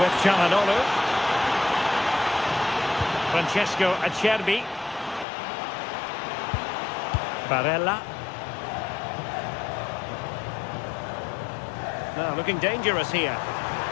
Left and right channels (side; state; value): right; drops out; at 5.2 s